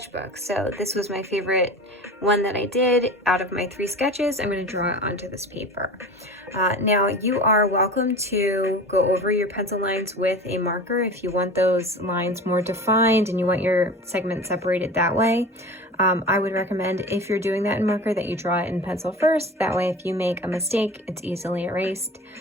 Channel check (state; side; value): normal; both; correlation 0.35